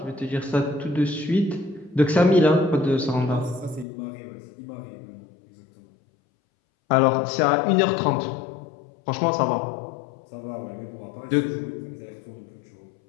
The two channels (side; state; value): right; drops out; at 3.9 s